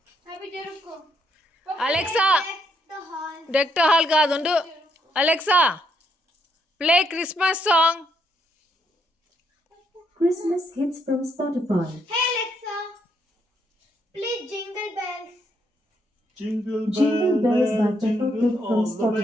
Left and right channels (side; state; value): both; normal; correlation 0.75